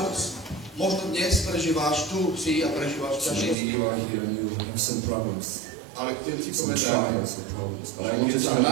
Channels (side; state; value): left; drops out; at 3.6 s